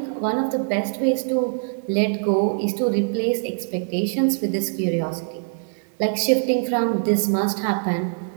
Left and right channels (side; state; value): left; silent; digital silence